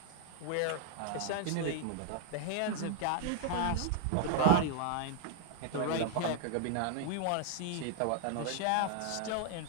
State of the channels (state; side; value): different; both; correlation 0.00